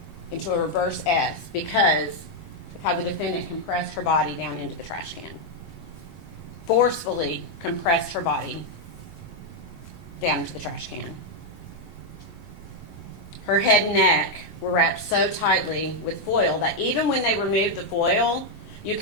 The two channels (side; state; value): both; normal; correlation 0.00